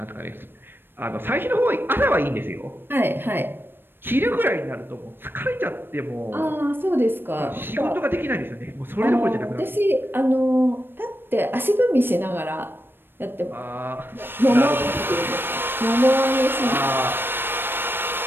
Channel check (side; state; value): left; late; 0.099 ms